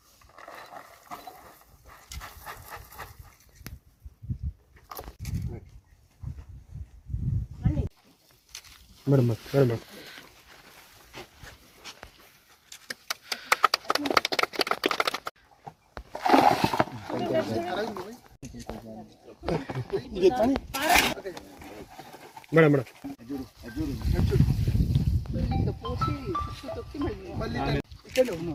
మేడం మేడం మేడం మేడం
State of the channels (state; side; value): identical; both; correlation 1.00